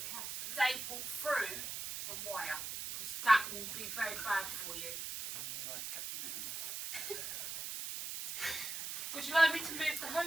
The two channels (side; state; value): right; noise; hiss, 5 dB below the sound